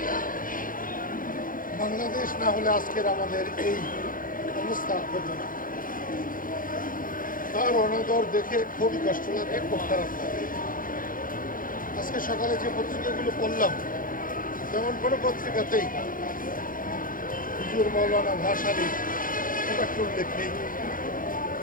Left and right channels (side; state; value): right; late; 0.40 ms